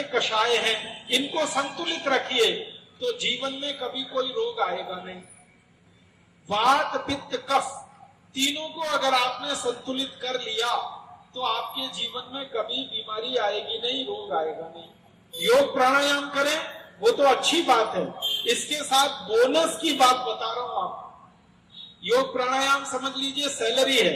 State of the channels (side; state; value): both; identical; correlation 1.00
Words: कषाय हैं, इनको संतुलित रखिए तो जीवन में कभी कोई रोग आएगा नहीं। वात, पित्त, कफ तीनों को अगर आपने संतुलित कर लिया तो आपके जीवन में कभी बीमारी आएगी नहीं, रोग आएगा नहीं। योग प्राणायाम करें वो तो अच्छी बात है, इसके साथ बोनस की बात बता रहा हूं आपको। योग प्राणायाम समझ लीजिए सैलरी